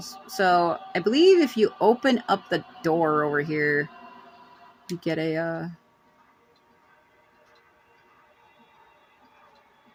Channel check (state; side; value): identical; both; correlation 1.00